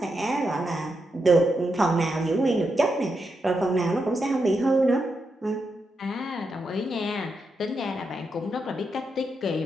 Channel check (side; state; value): both; normal; correlation 0.84